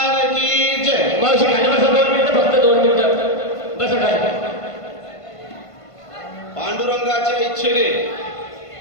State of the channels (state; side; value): late; right; 1.5 ms